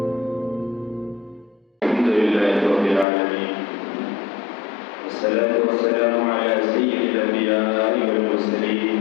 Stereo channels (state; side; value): drops out; right; at 3.1 s